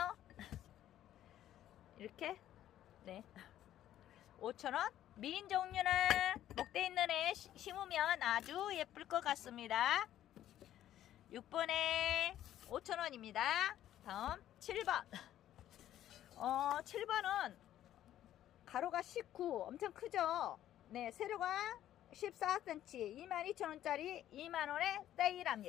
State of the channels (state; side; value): quieter; right; 12.2 dB